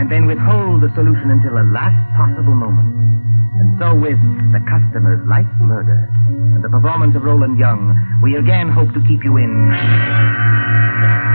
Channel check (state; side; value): inverted; both; correlation -1.00